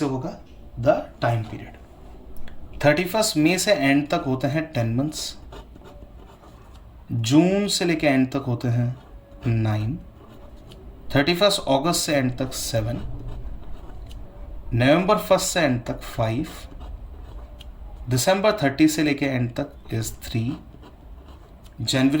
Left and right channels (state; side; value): identical; both; correlation 1.00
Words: होगा? The time period. 31 मई से एंड तक होते हैं 10 मंथ्स। जून से लेके एंड तक होते हैं 9। 31 अगस्त से एंड तक 7। नवंबर 1 से एंड तक 5। दिसंबर 30 से लेके एंड तक इज 3।